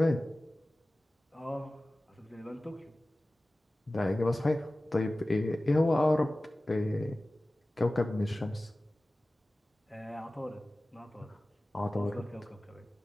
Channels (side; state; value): both; normal; correlation 0.97